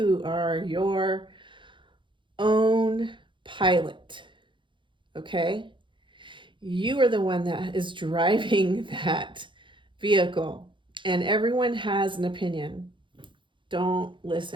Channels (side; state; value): left; late; 0.23 ms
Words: are your own pilot. Okay? You are the one that is driving that vehicle, and everyone has an opinion. Don't